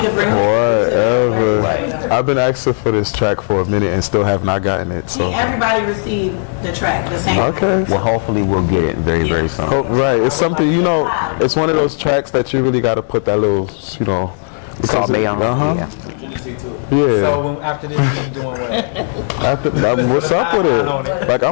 bring Whatever. I've been asking for this track for a minute and still have not gotten it. So everybody received the track the same. Okay. Well, hopefully we'll get it very, very soon. Right. It's something, it's one of those tracks that you really got to put that little, Salt Bay on. Yeah. So after this, you doing what? What's up with it? Like,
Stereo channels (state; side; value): silent; right; digital silence